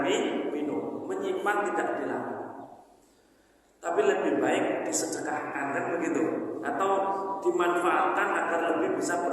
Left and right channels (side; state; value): both; identical; correlation 1.00